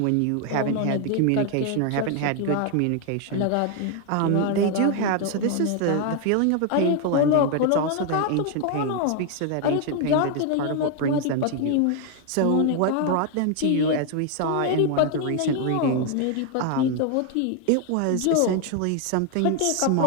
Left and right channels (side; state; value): both; different; correlation 0.00